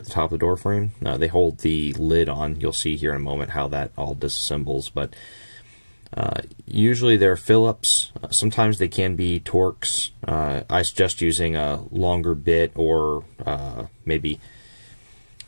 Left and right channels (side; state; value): both; inverted; correlation -1.00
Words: the top of the door frame. They hold the lid on. You'll see here in a moment how that all disassembles, but usually they're Phillips. Sometimes they can be Torx. I suggest using a longer bit or maybe